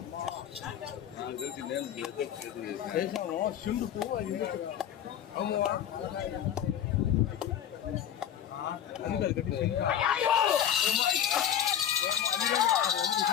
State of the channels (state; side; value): quieter; right; 9.9 dB